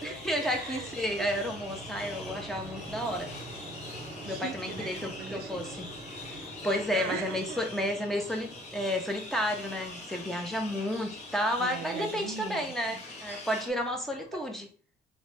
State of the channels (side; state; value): both; normal; correlation 0.58